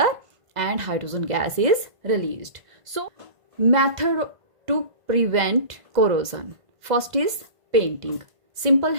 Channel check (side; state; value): left; late; 1.5 ms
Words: and hydrogen gas is released. So method to prevent corrosion, first is painting. Simple